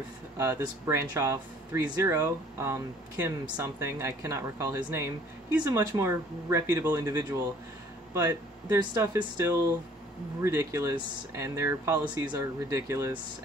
of this branch off, ThreeZero, Kim something, I cannot recall his name, he's a much more reputable individual. But their stuff is still ridiculous, and their policies are ridiculous,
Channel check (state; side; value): normal; both; correlation 0.55